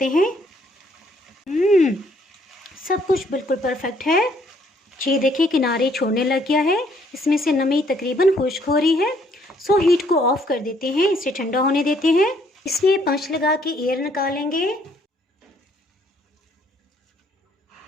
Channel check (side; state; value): both; normal; correlation 0.66